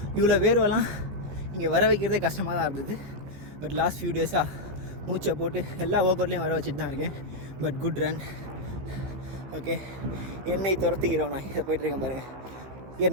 இவ்வளோ வேர்வெல்லாம் இங்கே வர வைக்கிறதே கஷ்டமாக தான் இருந்தது. பட் லாஸ்ட் ஃபியூ டேஸாக மூச்சை போட்டு எல்லா ஒர்க் அவுட்லேயும் வர வச்சுட்டு தான் இருக்கேன். But good run. ஓகே, என்னை துரத்துக்கிறோம். நான் இதை போய்ட்டுருக்கேன் பாருங்கள்.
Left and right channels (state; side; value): late; left; 15 ms